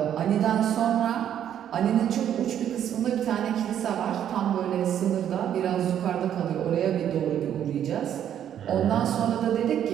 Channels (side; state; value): left; quieter; 10.0 dB